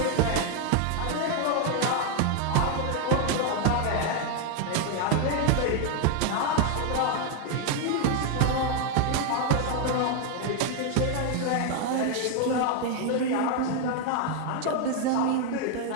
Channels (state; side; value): different; both; correlation 0.01